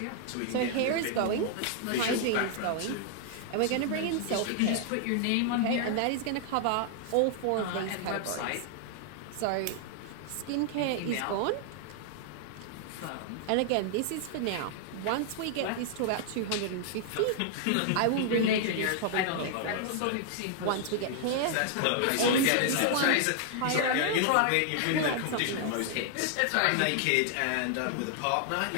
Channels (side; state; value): both; different; correlation 0.00